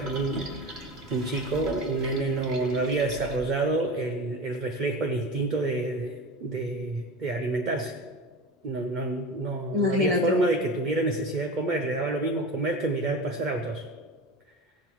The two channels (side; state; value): both; normal; correlation 0.30